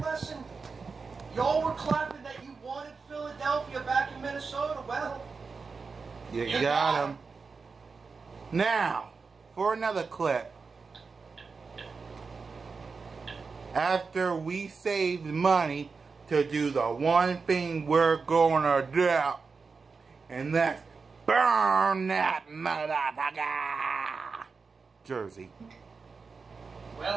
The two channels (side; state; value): left; quieter; 4.8 dB